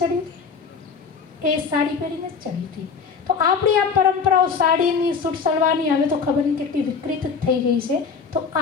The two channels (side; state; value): right; quieter; 5.6 dB